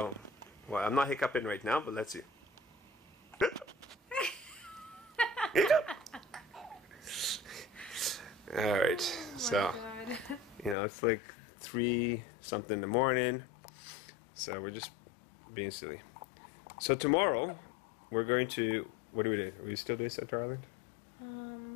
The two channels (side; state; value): right; drops out; at 10.8 s